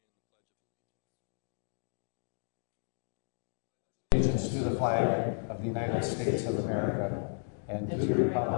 in the Pledge of Allegiance to the flag of the United States of America and to the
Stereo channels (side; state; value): right; silent; digital silence